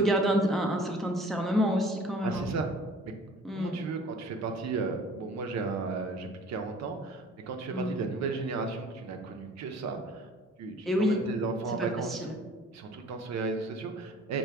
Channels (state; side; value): normal; both; correlation 0.49